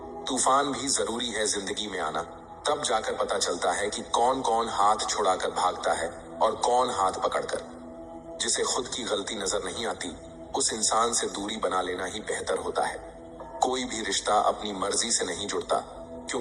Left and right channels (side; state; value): both; identical; correlation 1.00